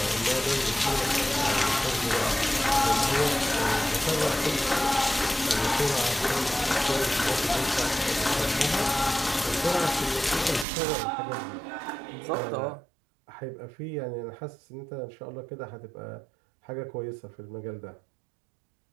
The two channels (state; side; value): drops out; left; at 10.7 s